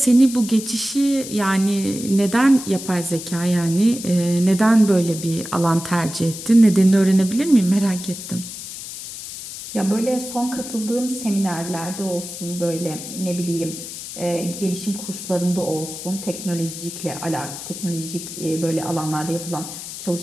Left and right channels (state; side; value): noise; left; hiss, 10 dB below the sound